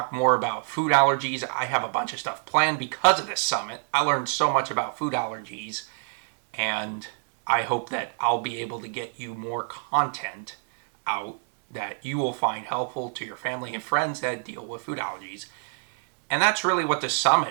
more about food allergies. I have a bunch of stuff planned because of this summit. I learned so much about food allergies, and I hope that I'll be able to get you more content out that you will find helpful to your family and friends that deal with food allergies. And that's really what the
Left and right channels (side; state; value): left; silent; digital silence